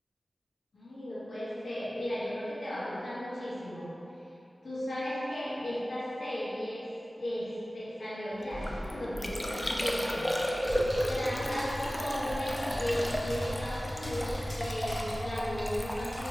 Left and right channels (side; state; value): both; normal; correlation 0.97